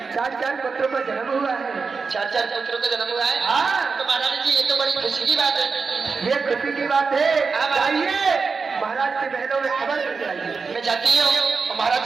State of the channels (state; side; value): quieter; left; 4.8 dB